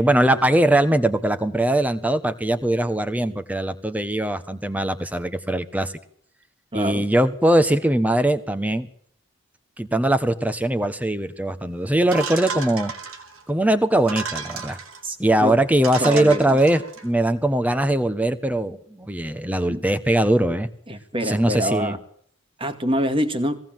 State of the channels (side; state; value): both; normal; correlation 0.81